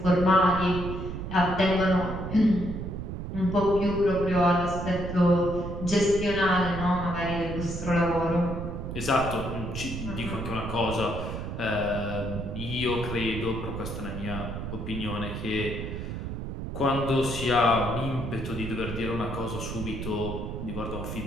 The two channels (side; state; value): right; noise; rumble, 6 dB below the sound